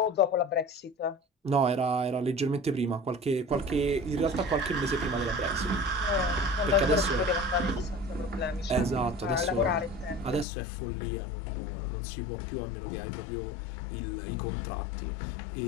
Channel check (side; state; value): right; drops out; at 10.5 s